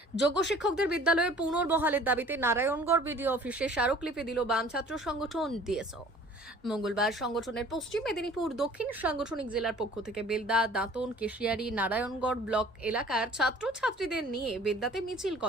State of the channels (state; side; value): normal; both; correlation 0.50